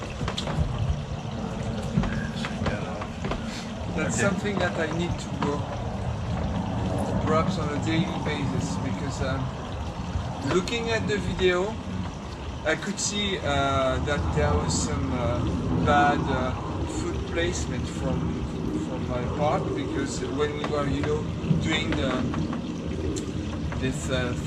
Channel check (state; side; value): identical; both; correlation 1.00